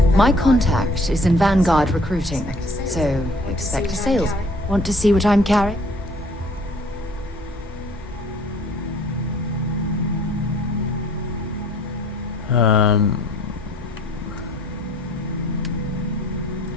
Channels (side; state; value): both; normal; correlation 0.56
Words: My contact is in Vanguard recruiting, so expect a sales. Want to see what I'm carrying?